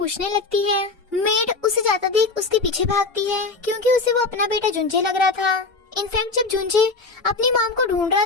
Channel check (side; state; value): right; quieter; 3.8 dB